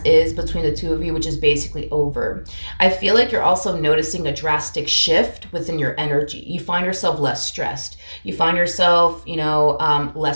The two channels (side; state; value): both; inverted; correlation -1.00